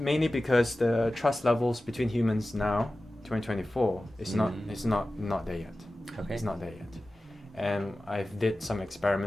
because the trust levels between humans now, 2024, is not there yet. Okay. It's not there yet. And I've did some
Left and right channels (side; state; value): both; normal; correlation 0.95